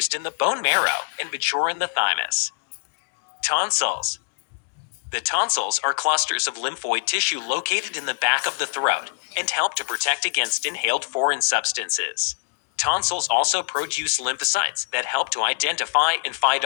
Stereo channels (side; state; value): right; silent; digital silence